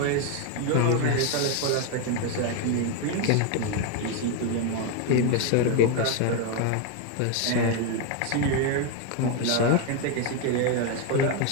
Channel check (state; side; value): different; both; correlation 0.01